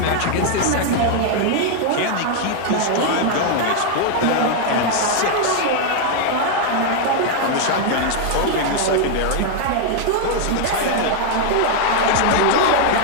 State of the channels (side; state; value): both; different; correlation 0.00